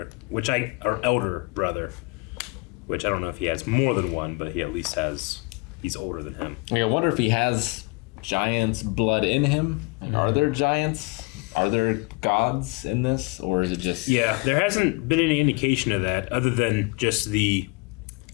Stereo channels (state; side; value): quieter; right; 27.6 dB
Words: or elder brother, which I don't know if he has more than one, but he at least he's older than him. Like, I wonder if he has giants' blood in him. Like, are there giants? Are there gods in this, or is it just? Yeah, there hasn't been any indication of that other than just the